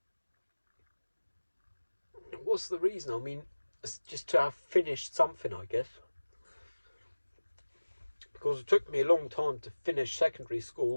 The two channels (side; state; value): both; inverted; correlation -1.00